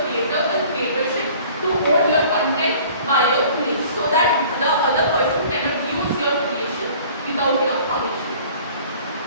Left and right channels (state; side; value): inverted; both; correlation -0.49